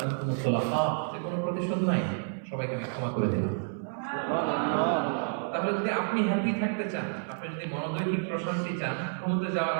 তুলাকা, যে কোনো প্রতিশোধ নাই, সবাইকে আমি ক্ষমা করে দিলাম। তাহলে যদি আপনি হ্যাপি থাকতে চান, আপনি যদি মনোদৈহিক প্রশান্তি চান, ঘুমোতে যাওয়ার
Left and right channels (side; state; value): left; silent; 58 dB below the other